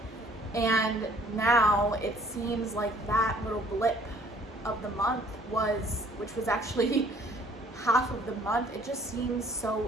And now it seems like that little blip of the month which was actually half of the month, it just seems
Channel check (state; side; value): normal; both; correlation 0.58